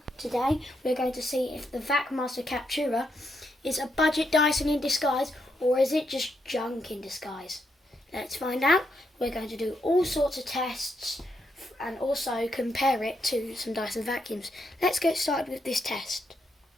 Today we're going to see if the vacmaster captura is a budget Dyson in disguise or is it just junk in disguise. Let's find out. We're going to do all sorts of tests and also compare it to some Dyson vacuums. Let's get started with this test.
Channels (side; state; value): both; normal; correlation 0.80